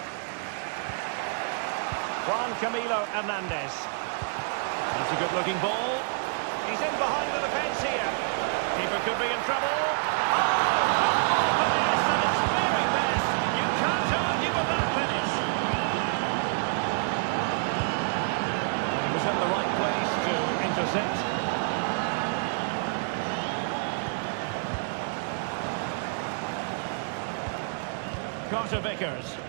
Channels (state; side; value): silent; left; digital silence